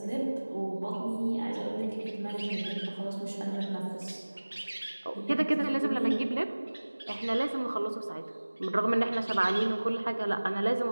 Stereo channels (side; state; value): both; inverted; correlation -1.00